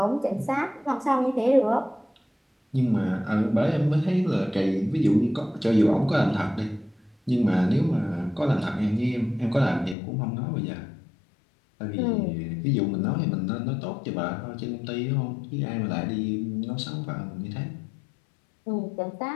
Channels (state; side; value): drops out; right; at 10.0 s